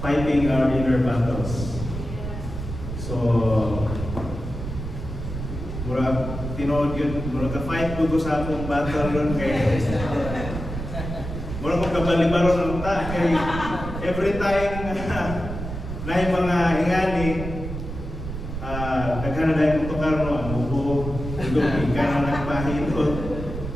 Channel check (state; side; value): noise; right; rumble, 7 dB below the sound